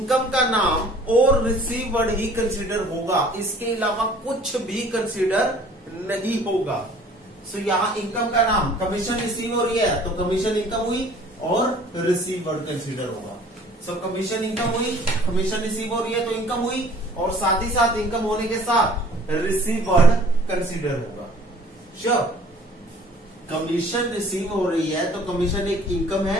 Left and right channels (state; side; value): normal; both; correlation 0.52